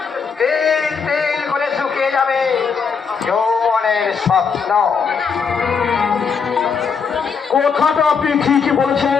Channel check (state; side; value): quieter; right; 5.9 dB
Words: তেল তেল করে শুকিয়ে যাবে যৌবনের স্বপ্ন। কথাটা আপনি ঠিকই